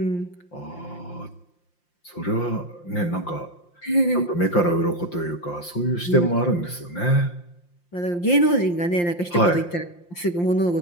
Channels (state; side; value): late; right; 5.7 ms